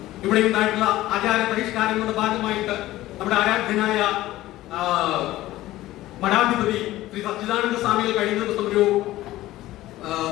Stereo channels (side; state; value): right; quieter; 16.1 dB